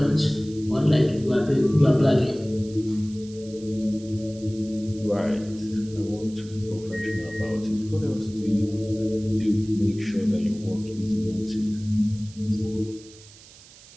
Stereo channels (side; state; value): right; noise; hiss, 22 dB below the sound